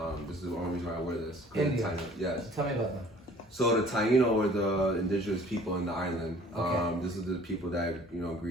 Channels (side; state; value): both; normal; correlation 0.52